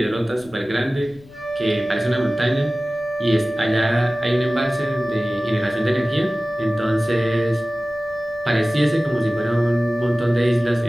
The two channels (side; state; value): left; noise; rumble, 25 dB below the sound